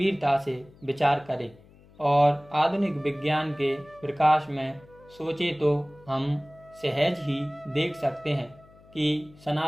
से विचार करें और आधुनिक विज्ञान के प्रकाश में सोचें तो हम सहज ही देख सकते हैं कि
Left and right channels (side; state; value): left; noise; hum, 26 dB below the sound